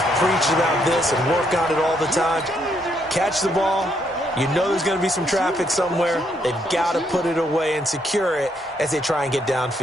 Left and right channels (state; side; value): normal; both; correlation 0.74